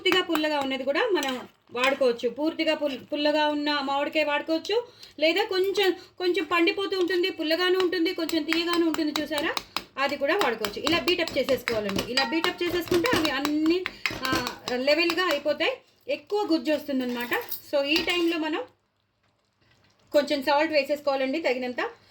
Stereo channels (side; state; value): both; identical; correlation 1.00